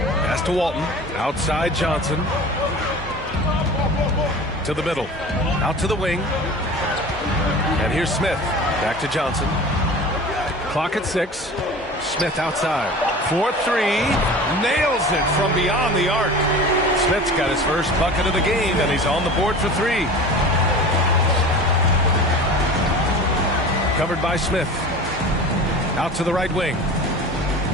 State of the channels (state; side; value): normal; both; correlation 0.37